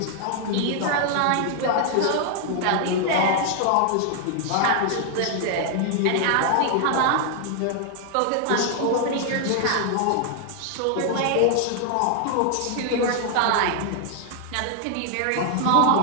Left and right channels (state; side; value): different; both; correlation 0.00